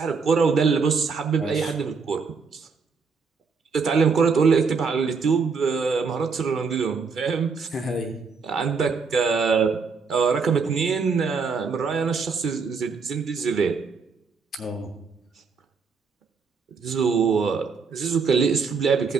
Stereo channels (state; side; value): quieter; left; 5.1 dB